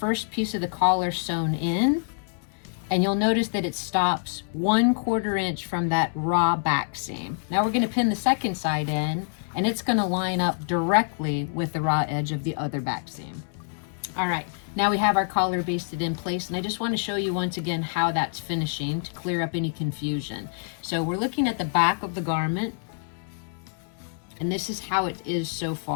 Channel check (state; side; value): silent; right; 61 dB below the other